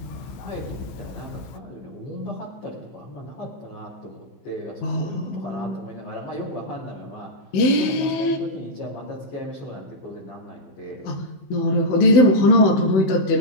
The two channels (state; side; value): late; right; 16 ms